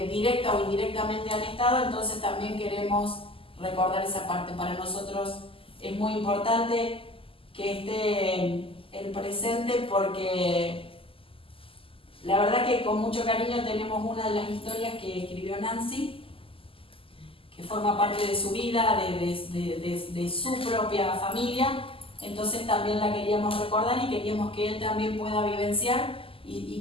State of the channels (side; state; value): right; late; 0.26 ms